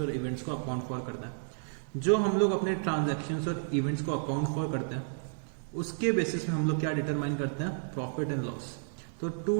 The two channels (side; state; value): left; silent; 57 dB below the other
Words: इवेंट्स को अकाउंट फॉर करना है। जो हम लोग अपने ट्रांजैक्शंस और इवेंट्स को अकाउंट फॉर करते हैं उसके बेसिस में हम लोग क्या डिटरमाइन करते हैं, प्रॉफिट एंड लॉस। तो